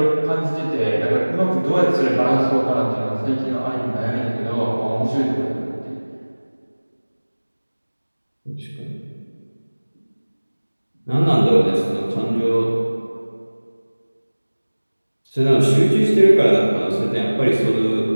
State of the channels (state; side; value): inverted; both; correlation -1.00